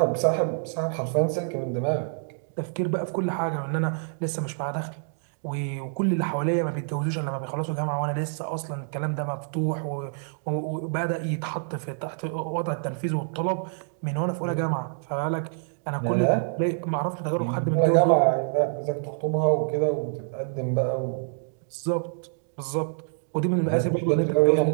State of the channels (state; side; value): silent; left; digital silence